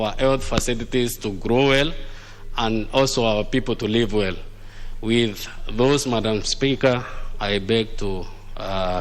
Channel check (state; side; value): identical; both; correlation 1.00